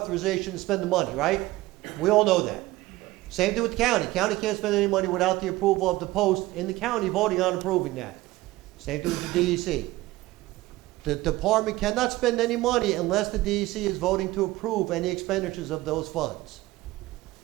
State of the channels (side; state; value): left; quieter; 18.3 dB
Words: to spend the money, right? We all know that. Same thing with the county. County can't spend any money without the approval of the post in the county voting on approving that. Same thing with the DEC. The department cannot spend any money unless the DEC is voting to approve any expenditures of those funds.